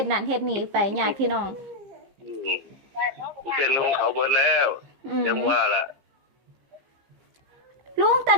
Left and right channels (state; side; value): late; left; 15 ms